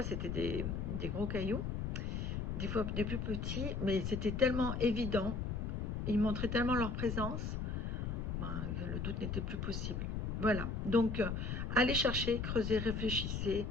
c'était des gros cailloux, des fois des plus petits, mais c'était tellement évident, ils montraient tellement leur présence, le doute n'était plus possible. Voilà, donc allez chercher, creusez, réfléchissez,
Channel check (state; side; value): noise; left; rumble, 2 dB below the sound